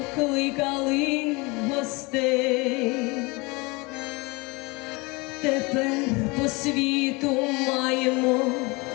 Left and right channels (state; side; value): quieter; right; 26.0 dB